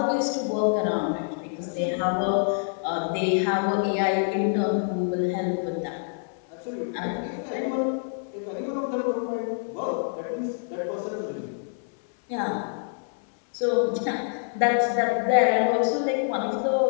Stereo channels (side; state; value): right; silent; 59 dB below the other